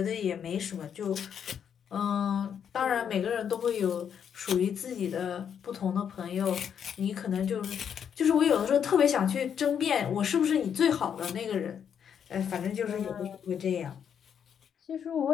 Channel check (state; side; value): quieter; right; 8.1 dB